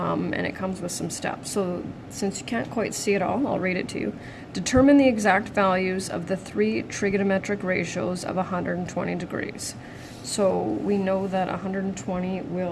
it comes with some steps. So since you can't quite see it all, I'll read it to you. Determine the exact values of the 3 trigonometric ratios of 120 degrees. So we know that 120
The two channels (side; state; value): both; identical; correlation 1.00